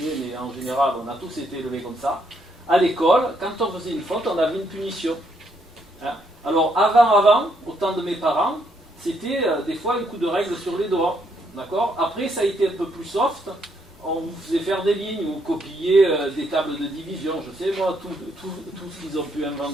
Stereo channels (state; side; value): normal; both; correlation 0.73